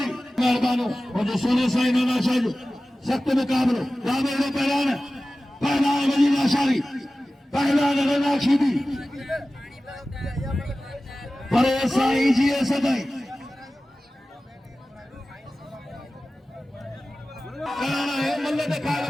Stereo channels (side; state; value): both; normal; correlation 0.96